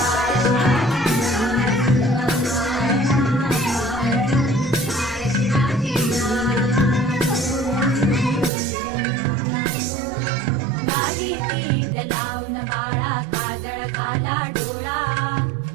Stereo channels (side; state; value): left; drops out; at 8.5 s